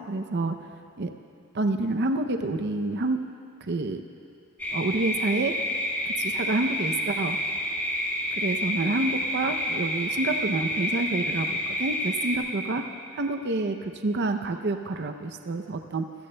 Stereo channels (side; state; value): both; normal; correlation 0.38